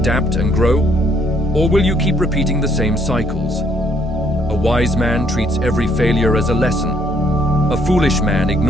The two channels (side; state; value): both; normal; correlation 0.68